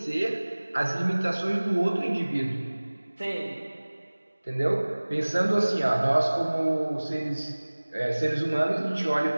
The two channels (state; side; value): inverted; both; correlation -1.00